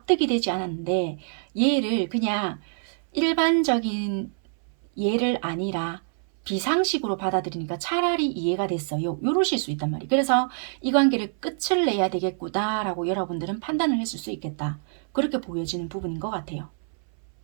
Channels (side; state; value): left; silent; 60 dB below the other